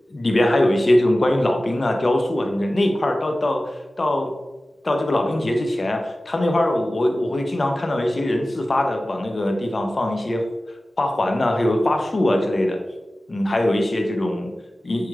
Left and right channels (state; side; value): normal; both; correlation 0.96